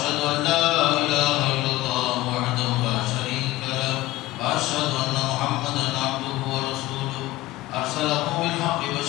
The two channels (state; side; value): quieter; right; 17.5 dB